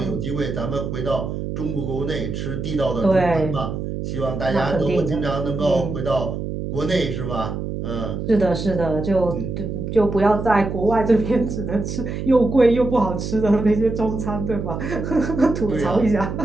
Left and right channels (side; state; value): right; noise; hum, 5 dB below the sound